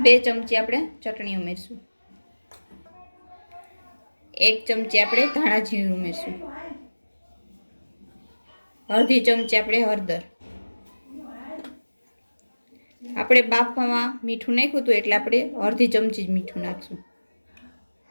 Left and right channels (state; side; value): inverted; both; correlation -1.00